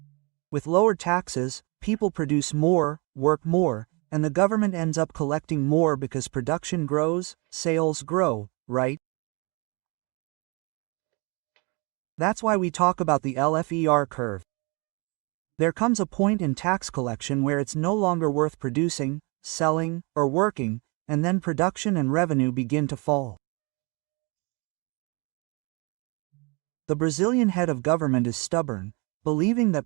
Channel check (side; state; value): left; quieter; 30.2 dB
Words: With lower taxes, people produce more, work more, and the government ends up collecting more because production grows, sales grow, right? That's why we talk about the LFER curve. There comes a point in tax collection where it's no longer worth producing, selling, or working, and then production and revenue begin to fall. The Brazilian head of government is stubborn, believing